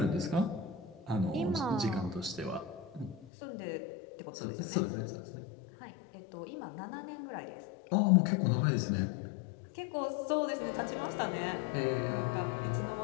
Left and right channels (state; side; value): drops out; right; at 3.2 s